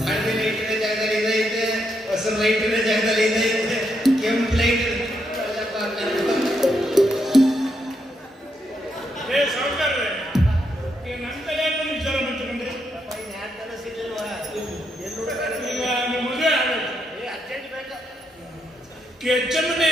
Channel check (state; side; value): normal; both; correlation 0.79